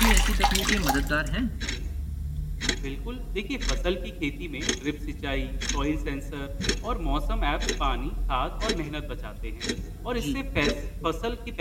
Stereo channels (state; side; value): identical; both; correlation 1.00